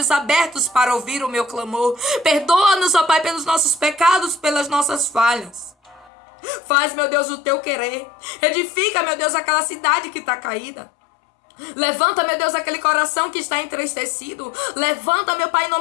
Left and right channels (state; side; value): drops out; right; at 6.1 s